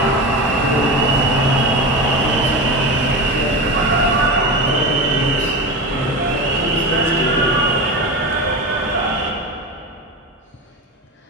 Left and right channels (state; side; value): normal; both; correlation 0.24